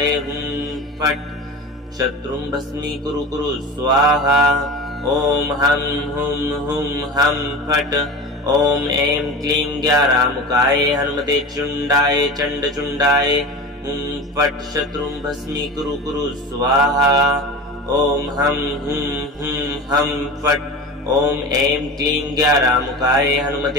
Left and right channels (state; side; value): normal; both; correlation 0.31